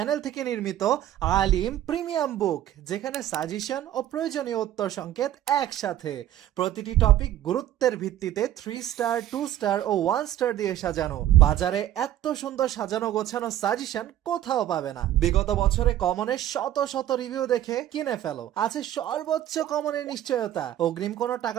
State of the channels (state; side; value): quieter; left; 12.4 dB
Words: থেকে নির্মিত আলিম প্রিমিয়াম বুক, যেখানে সাজেশন ও প্রয়োজনীয় উত্তর সংকেত একসাথে। প্রতিটি টপিক গুরুত্বের ভিত্তিতে 3 স্টার, 2 স্টার ও 1 স্টার দিয়ে সাজানো। বাজারে এত সুন্দর সাজানো গোছানো সাজেশন কোথাও পাবে না। বিগত বছরে কমনের শত শত রিভিউ দেখে কিনে ফেলো। আছে সর্বোচ্চ কমনের নিশ্চয়তা। অগ্রিম কোনো